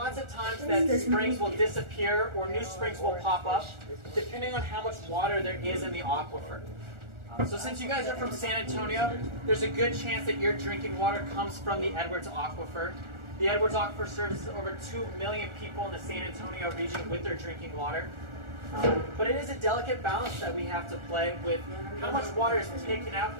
of times that springs will disappear or new springs will pop up, depending on how much water there is in the aquifer. So since you guys are from San Antonio, there's a good chance that your drinking water comes from the Edwards Aquifer. The Edwards Aquifer services over 2 million people in the San Antonio region with their drinking water. But it is a delicate balance that we have to play with how much water is taken out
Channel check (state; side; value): late; left; 1.4 ms